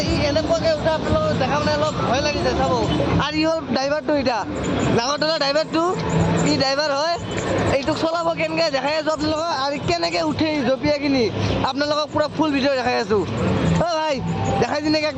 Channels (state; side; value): identical; both; correlation 1.00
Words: ই এনেকুৱাকৈ উঠে আপোনালোকক দেখা মানে অলপ ভয় লাগিছে চাব আৰু ই হ'ল ড্ৰাইভাৰটো এতিয়া নাগৰতলা ড্ৰাইভাৰটো ই ড্ৰাইভাৰ হয় এইটোক চলাব কেনেকৈ দেখাই আছোঁ আপোনালোকক আৰু কেনেকৈ উঠে জঁপিয়াই কিনি আপোনালোকক পূৰা ফুল ভিডিঅ' দেখাই আছোঁ অ ভাই দেখাই দি নেকি